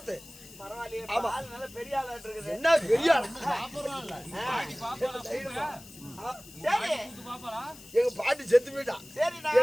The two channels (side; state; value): left; noise; hiss, 19 dB below the sound